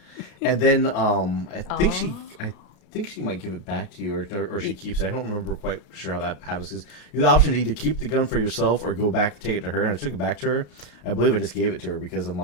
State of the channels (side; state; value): right; late; 33 ms